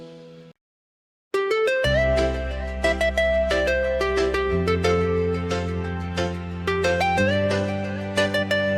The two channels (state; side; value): identical; both; correlation 1.00